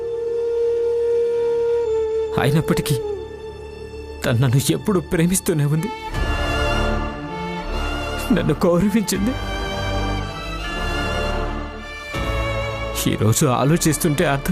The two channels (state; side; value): identical; both; correlation 1.00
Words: అయినప్పటికీ తను నన్ను ఎప్పుడు ప్రేమిస్తూనే ఉంది, నన్ను గౌరవించింది. ఈరోజు ఆలోచిస్తుంటే